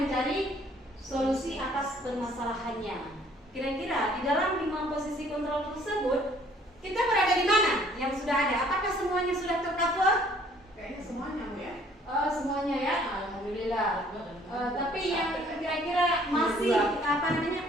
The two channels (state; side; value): normal; both; correlation 0.59